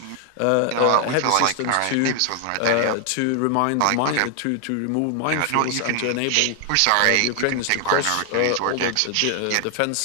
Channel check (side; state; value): both; different; correlation 0.00